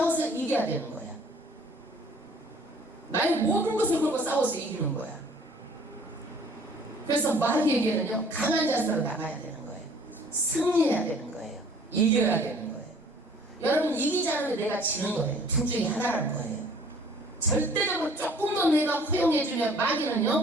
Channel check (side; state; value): both; normal; correlation 0.54